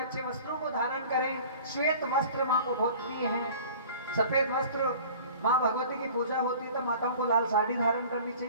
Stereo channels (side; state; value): both; inverted; correlation -0.44